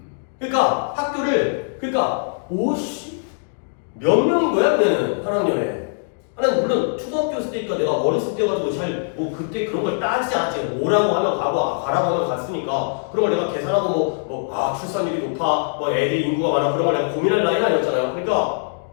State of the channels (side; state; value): right; silent; digital silence